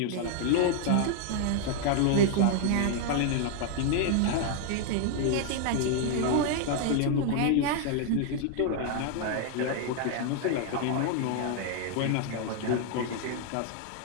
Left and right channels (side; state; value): both; different; correlation 0.00